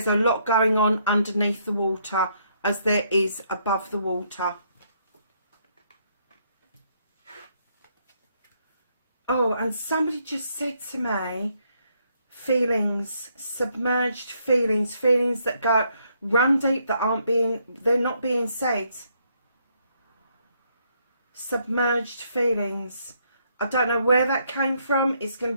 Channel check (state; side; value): inverted; both; correlation -0.72